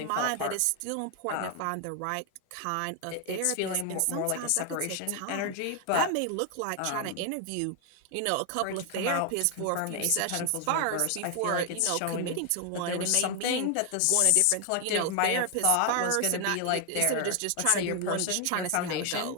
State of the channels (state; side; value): different; both; correlation 0.00